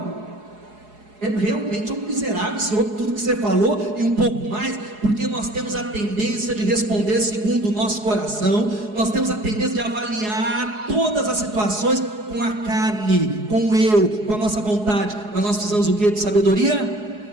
É realmente um miserável esse homem, tudo que você falou e um pouco mais, porque nós temos a tendência de responder segundo o nosso coração, nós temos a tendência de avaliar todas as situações com a carne, com o eu, com a nossa vontade. Mas nós precisamos o que? De sabedoria?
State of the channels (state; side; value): late; left; 4.8 ms